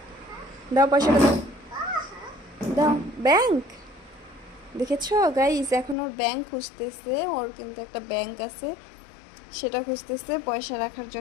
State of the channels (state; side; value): drops out; right; at 6.0 s